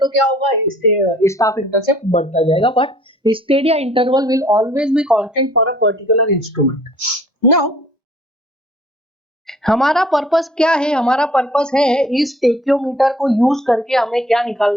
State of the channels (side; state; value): both; normal; correlation 0.54